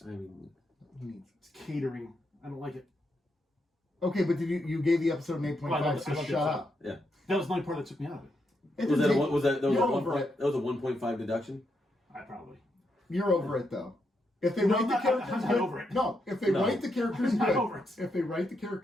I mean, He needs. it's catering. I don't like it. Okay, but you gave the episode an 8.5, Well, I love so the shut episode. up. yeah. That was the only part that took me out of it. It Was didn't that a take- one? Was that was You're a one over point? it. That was a 1.5 deduction. I probably. You're over it though. If they No, write I'm the not- characters I'm not good, over it. no. If they No. write the characters I'm not good, over it. if they write the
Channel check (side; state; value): both; normal; correlation 0.81